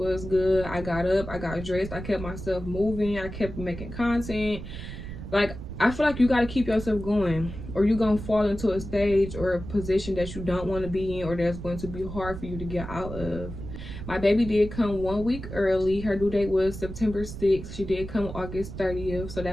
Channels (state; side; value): noise; right; rumble, 9 dB below the sound